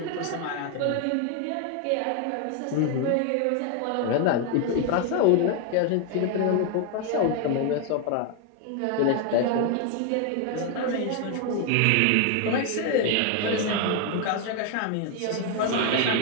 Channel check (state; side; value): different; both; correlation 0.01